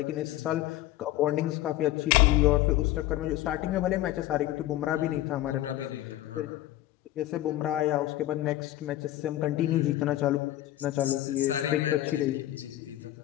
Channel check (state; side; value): quieter; right; 14.8 dB